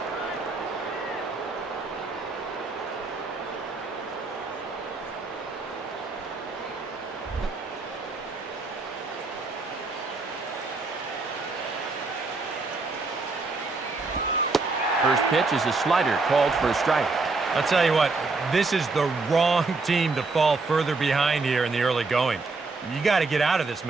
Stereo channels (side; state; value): left; quieter; 3.8 dB